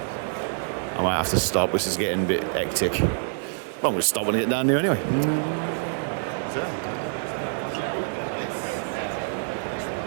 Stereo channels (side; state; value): left; silent; 61 dB below the other